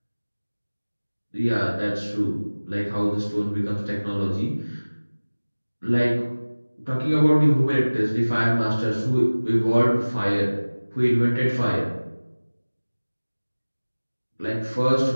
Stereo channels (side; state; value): both; inverted; correlation -1.00